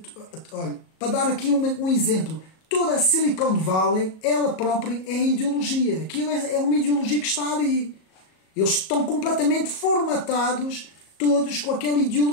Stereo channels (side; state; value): right; late; 37 ms